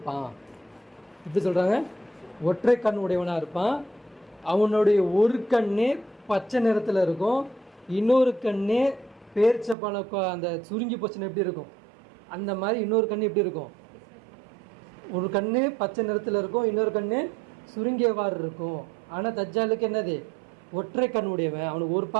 எப்படி சொல்கிறாங்க? ஒற்றை கண் உடையவனாக இருப்பான். அவனுடைய ஒரு கண்ணே பச்சை நிறத்தில் இருக்கும், இன்னொரு கண்ணே பேரிச்சப்பழம் அந்த சுருங்கி போச்சுன்னு எப்படி இருக்கும் அந்த மாதிரி இன்னொரு கண்ணு எப்படி இருக்கும்? ஒரு கண்ணு பச்சை நிறத்தில் இருக்கும், இன்னொரு கண்ணு சுருங்கியவாறு இருக்கும். ஆனால் தஜ்ஜாலுக்கு என்னது? ஒற்றை கண் உடையவன், அவனுக்கு ஒரு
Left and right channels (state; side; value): drops out; left; at 9.8 s